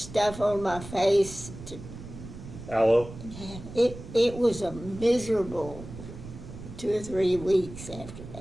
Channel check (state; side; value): noise; right; rumble, 13 dB below the sound